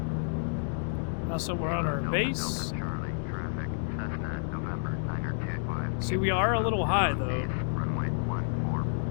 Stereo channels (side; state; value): right; silent; digital silence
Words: Now somewhere on our base. Charlie, traffic, Cessna, November, 925. See, we are a little high though. Runway